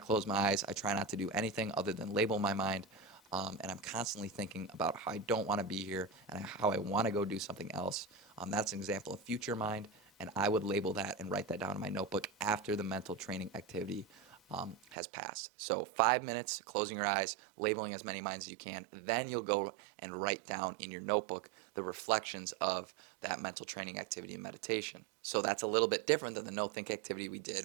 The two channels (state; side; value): drops out; left; at 15.0 s